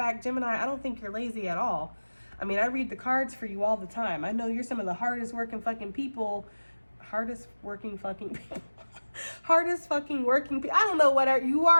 Gemini, I don't think you're lazy at all. I mean, I read the cards for you all the time. I know you're some of the hardest working fucking people. Hardest working fucking people. Hardest fucking working people. I don't know what you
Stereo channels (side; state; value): both; inverted; correlation -1.00